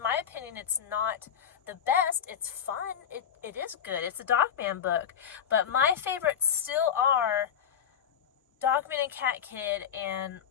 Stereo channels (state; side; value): quieter; right; 8.3 dB